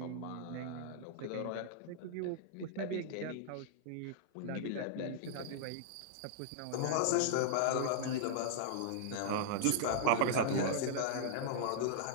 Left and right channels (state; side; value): different; both; correlation -0.01